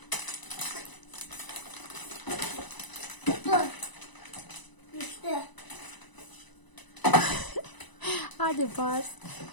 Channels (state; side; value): late; right; 1.0 ms